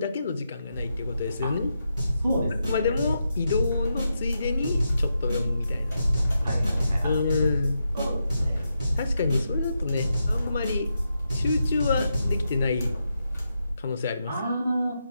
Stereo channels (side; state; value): both; inverted; correlation -0.85